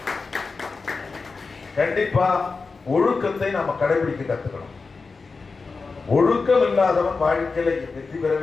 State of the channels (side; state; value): right; quieter; 4.3 dB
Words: கண்டிப்பா ஒழுக்கத்தை நாம கடைபிடிக்க கத்துக்கணும். ஒழுக்கம் இல்லாதவன் வாழ்க்கையில வெற்றி